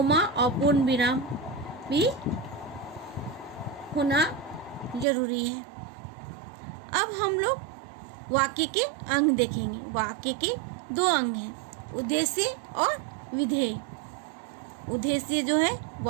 और पूर्ण विराम भी होना जरूरी है। अब हम लोग वाक्य के अंग देखेंगे। वाक्य के दो अंग हैं, उद्देश्य और विधेय। उद्देश्य जो है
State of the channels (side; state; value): left; drops out; at 5.1 s